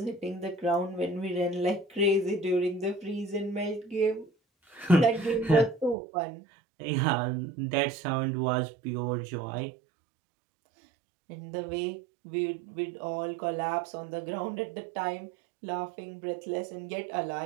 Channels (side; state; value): left; drops out; at 6.0 s